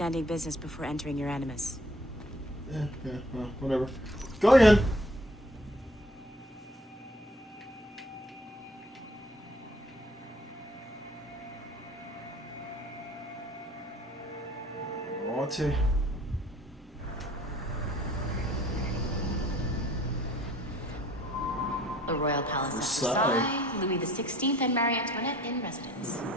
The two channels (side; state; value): both; normal; correlation 0.55